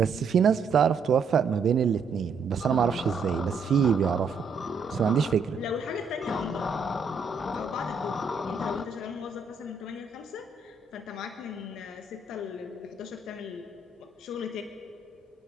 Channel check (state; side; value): quieter; left; 4.5 dB